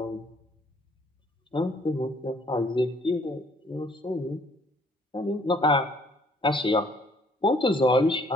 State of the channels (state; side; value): normal; both; correlation 0.63